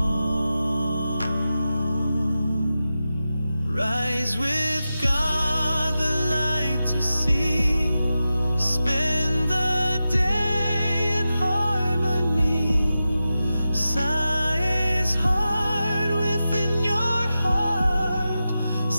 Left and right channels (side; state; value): both; inverted; correlation -0.92